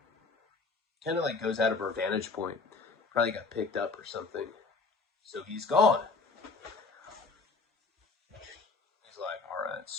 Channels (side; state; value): right; quieter; 4.1 dB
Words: kind of like goes out of our vantage point. Probably got picked up or something. So he's gone. He's like, all right,